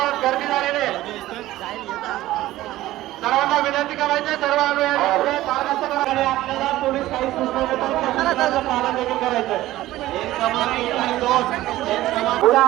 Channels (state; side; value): quieter; left; 15.8 dB